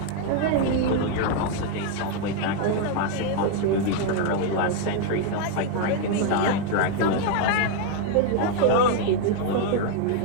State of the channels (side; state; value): both; different; correlation 0.01